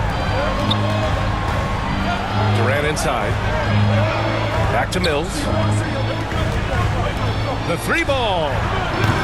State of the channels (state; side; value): identical; both; correlation 1.00